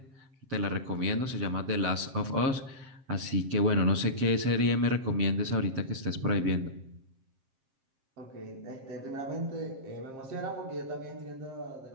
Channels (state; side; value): late; left; 7.5 ms